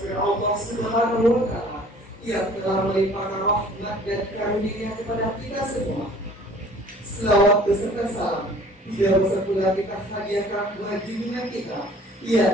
firman Allah Subhanahu wa Ta'ala yang telah melimpahkan rahmat dan karunia kepada kita semua. Selawat beserta salam tidak usah pula kita hadiahkan buat junjungan kita,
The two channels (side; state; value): both; normal; correlation 0.51